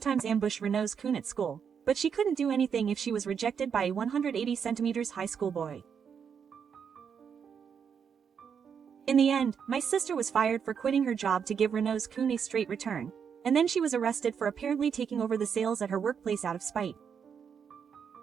ambushed Renault's-kun at school, but she couldn't do anything if she was rejected by a 180 centimeters high school boy. In the end, my sister was fired for quitting her job to give Renault's-kun a straight return, and then she was arrested for apparently taking over the sales at her workplace out of spite.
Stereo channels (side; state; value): left; quieter; 7.1 dB